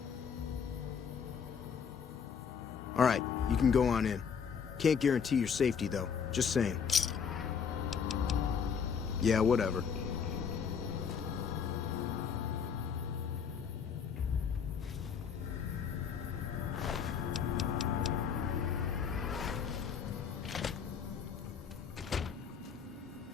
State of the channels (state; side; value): quieter; right; 6.7 dB